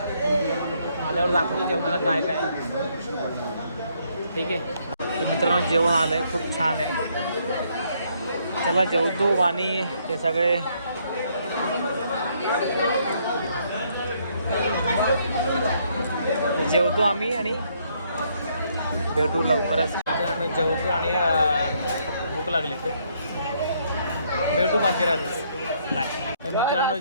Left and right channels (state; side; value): inverted; both; correlation -0.70